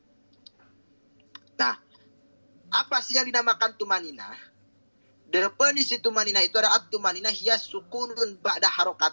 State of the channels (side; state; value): both; inverted; correlation -1.00